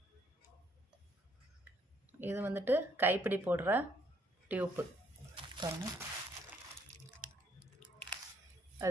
இது வந்துட்டு கைப்பிடி போடுற டியூப்பு பாருங்க.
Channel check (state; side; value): normal; both; correlation 0.68